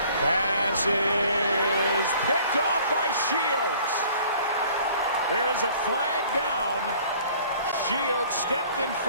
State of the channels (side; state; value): both; inverted; correlation -0.53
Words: Pass is picked off by Shields. There is a flag down. Shields stepped in